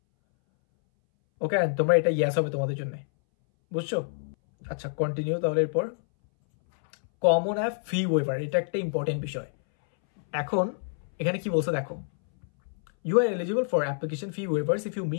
ওকে, তোমরা এটা ইয়েস হবে তোমাদের জন্য, বুঝছো? আচ্ছা, কন্টিনিউ। তাহলে এরপর কমন অ্যাপ ফি ওয়েভার, এটা একটা ইম্পর্টেন্ট বিষয়। এখন এখানে কি বলছে দেখো, you are eligible for application fee waivers if you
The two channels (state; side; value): silent; right; 60 dB below the other